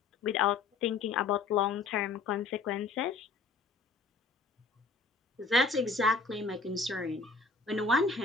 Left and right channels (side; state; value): right; quieter; 4.1 dB